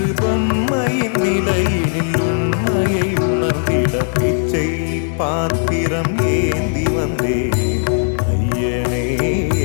பொம்மையின் நிலையினில் உண்மையை உணர்ந்திட பிச்சை பாத்திரம் ஏந்தி வந்தேன் ஐயனே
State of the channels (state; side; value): silent; right; digital silence